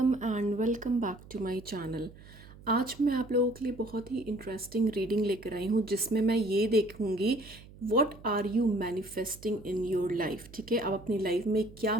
and welcome back to my channel. आज मैं आप लोगों के लिए बहुत ही इंटरेस्टिंग रीडिंग लेकर आई हूँ जिसमें मैं ये देखूँगी what are you manifesting in your life. ठीक है, आप अपनी लाइफ में क्या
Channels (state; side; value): noise; right; hum, 20 dB below the sound